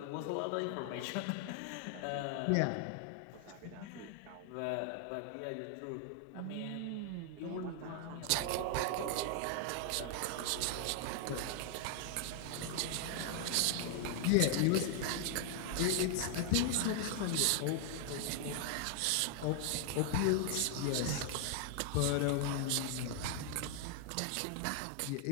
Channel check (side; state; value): both; different; correlation 0.00